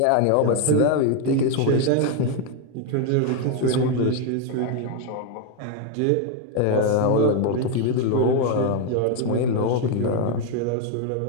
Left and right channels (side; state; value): both; different; correlation 0.01